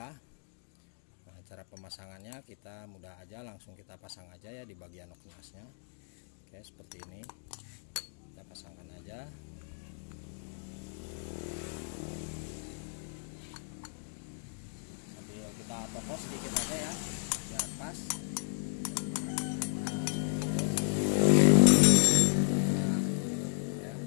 Nah, cara pemasangannya kita mudah aja, langsung kita pasang aja ya di bagian noken asnya. Oke, seperti ini kita pasangkan aja. Kita topos sedikit aja ya biar pas. Nah, ya.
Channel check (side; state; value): right; silent; digital silence